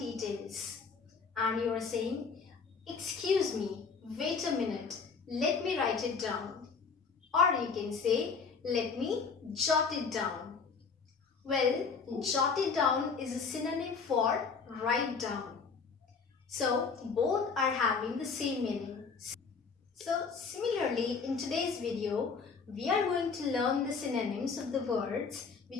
and you are saying, excuse me, wait a minute, let me write it down. Or you can say, let me jot it down. Well, jot it down is a synonym for write down. So both are having the same meaning. So similarly, in today's video, we are going to learn the synonyms of the words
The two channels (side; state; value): right; quieter; 5.2 dB